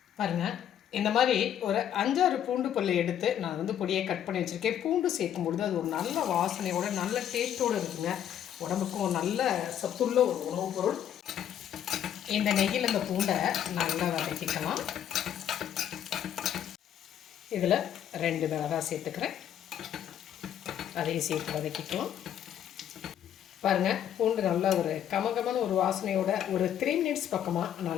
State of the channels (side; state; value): right; quieter; 10.1 dB